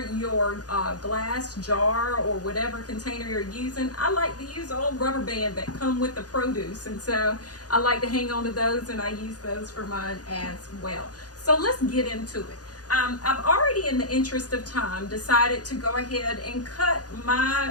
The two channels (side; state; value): right; late; 0.68 ms